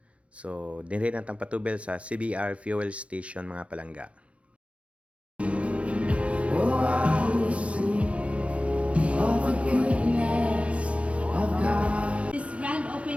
So dinhi natang patubel sa CBR Fuel Station mga palangga. Oh, I will sing of the goodness of God. This grand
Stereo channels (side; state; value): left; late; 0.062 ms